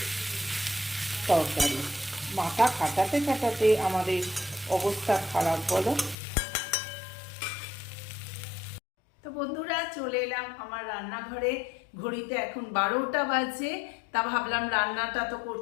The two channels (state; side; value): drops out; right; at 6.2 s